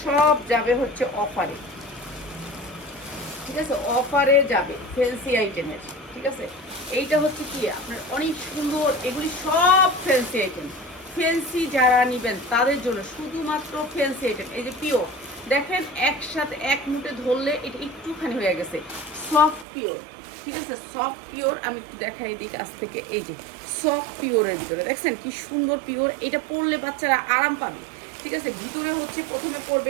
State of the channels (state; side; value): drops out; left; at 19.7 s